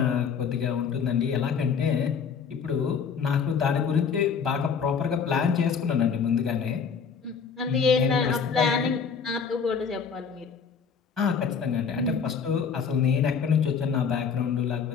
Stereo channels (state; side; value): quieter; right; 6.3 dB